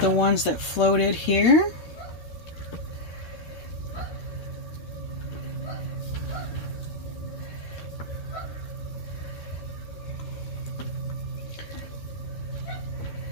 ones that floated here.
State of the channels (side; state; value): right; late; 13 ms